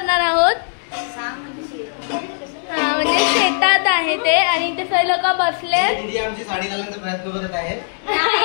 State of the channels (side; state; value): right; silent; 66 dB below the other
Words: आहोत. हा म्हणजे शेतात आहे ते आणि इथे सगळे लोक बसले. आमची साडी घालण्याचा प्रयत्न करत आहे.